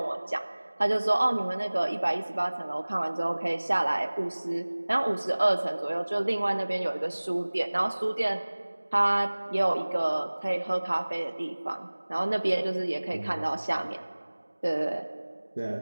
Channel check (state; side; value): inverted; both; correlation -1.00